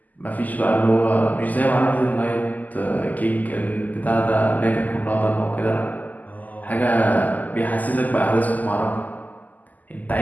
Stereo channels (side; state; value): right; late; 0.081 ms